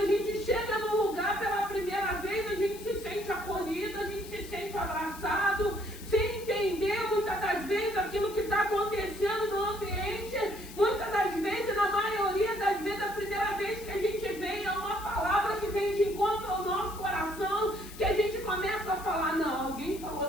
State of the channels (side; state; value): left; noise; hiss, 16 dB below the sound